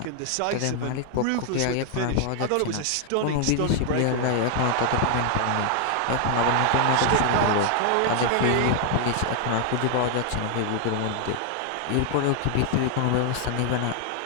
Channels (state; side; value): different; both; correlation 0.00